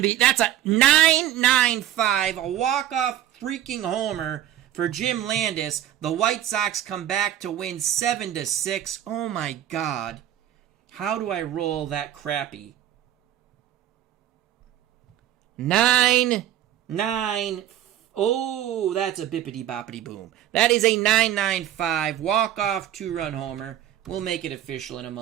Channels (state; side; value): quieter; left; 11.9 dB